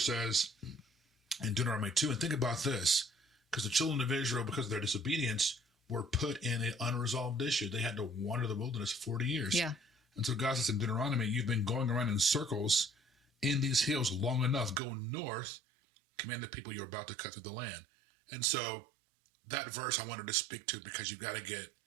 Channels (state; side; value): drops out; left; at 14.8 s